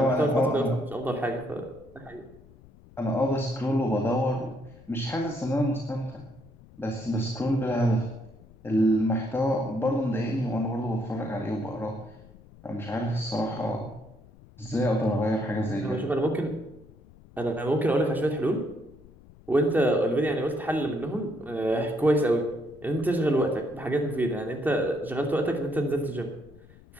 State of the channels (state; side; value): noise; left; rumble, 23 dB below the sound